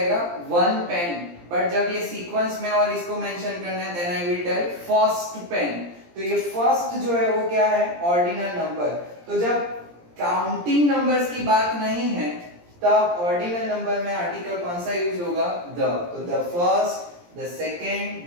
वन पेन, बट जब ये सीक्वेंस में और इसको मेंशन करना है then I will tell first pen. तो ये फर्स्ट जो है वो क्या है? Ordinal number. तो जब काउंटिंग नंबर्स की बात नहीं है तब ऑर्डिनल नंबर में आर्टिकल कौन सा यूज होगा? द। तो the first, the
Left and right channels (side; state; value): left; late; 17 ms